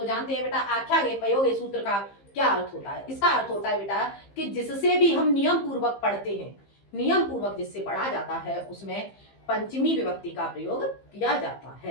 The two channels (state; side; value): late; right; 15 ms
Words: जानते हैं बेटा आख्यागे पयोगे सूत्र का क्या अर्थ होता है? इसका अर्थ होता है बेटा कि जिससे भी हम नियम पूर्वक पढ़ते हैं, नियम पूर्वक जिससे पढ़ा जाता है उसमें पंचमी विभक्ति का प्रयोग किया जाता